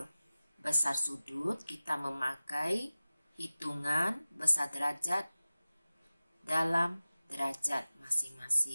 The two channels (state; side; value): inverted; both; correlation -0.96